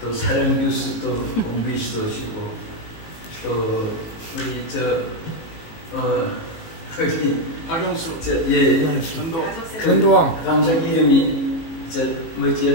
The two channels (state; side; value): late; right; 19 ms